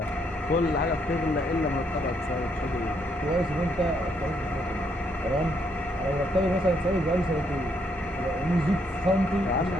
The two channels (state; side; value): normal; both; correlation 0.73